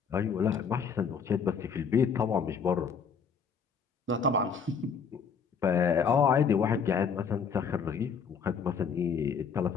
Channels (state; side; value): quieter; right; 6.1 dB